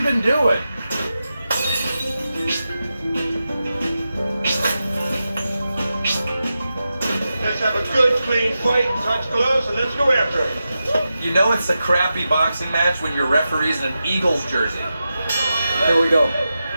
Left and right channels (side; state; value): both; inverted; correlation -0.91